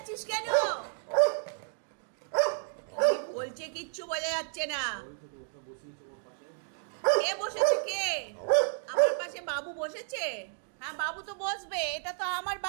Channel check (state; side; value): silent; left; digital silence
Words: কেন? বলছে কিচ্ছু বোঝা যাচ্ছে না। কে বসেছে? কে আমার পাশে? বাবু বসেছে? হ্যাঁ, বাবু তো বসবে, এটা তো আমার